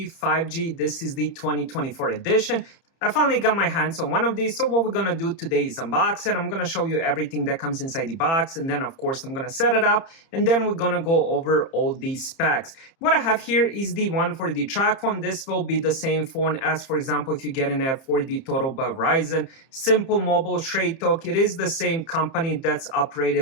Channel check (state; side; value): late; right; 30 ms